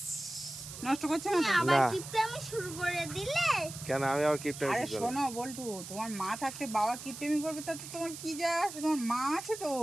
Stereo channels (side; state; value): right; noise; hiss, 11 dB below the sound